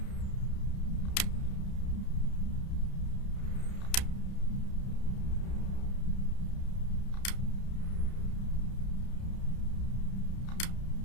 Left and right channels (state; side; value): late; right; 31 ms